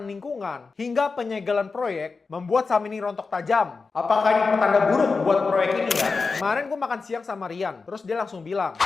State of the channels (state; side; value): quieter; right; 4.4 dB